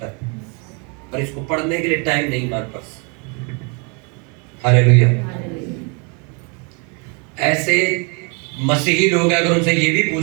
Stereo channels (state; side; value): quieter; left; 34.0 dB